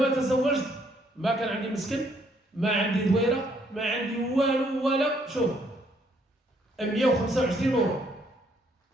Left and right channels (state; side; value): normal; both; correlation 0.68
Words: تزوجت ما كان عندي مسكن، ما عندي دويرة، ما عندي والو ولا شوف 125 يورو